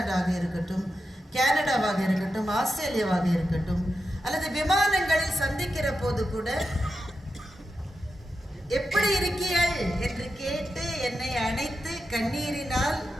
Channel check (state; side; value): normal; both; correlation 0.89